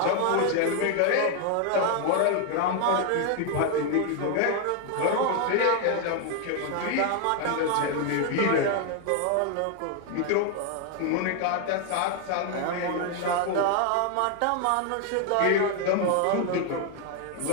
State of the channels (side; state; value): both; different; correlation 0.01